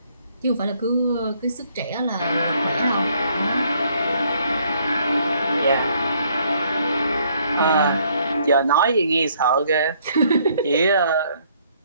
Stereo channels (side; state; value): both; inverted; correlation -0.66